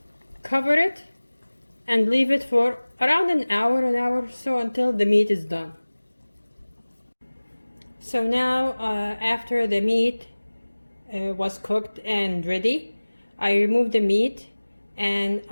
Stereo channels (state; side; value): inverted; both; correlation -1.00